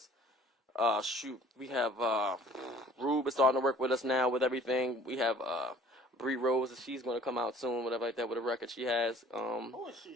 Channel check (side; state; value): both; normal; correlation 0.52